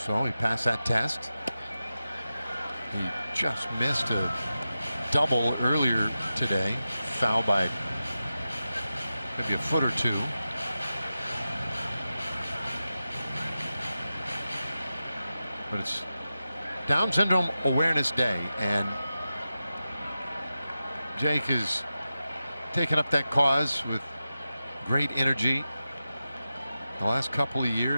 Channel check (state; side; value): inverted; both; correlation -0.92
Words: So he passed that test. He just missed a double earlier today, foul by maybe a foot or two. But it's Down Syndrome Awareness Day, and Jake is taken up that cause with great energy. The last couple of